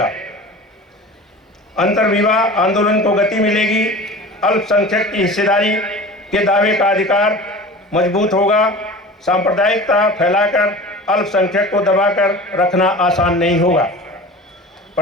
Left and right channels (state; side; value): normal; both; correlation 0.37